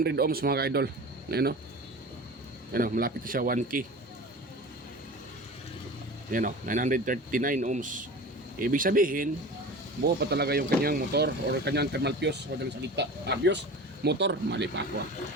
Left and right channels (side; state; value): both; normal; correlation 0.35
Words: ohms mga ka-idol. Ayun o, malapit na siya 1K. Ayun o, 939 ohms. Ibig sabihin buo pa talaga yung kanyang motor or kanyang thermal fuse o dalang salita. Fuse, motor, mali pa ako.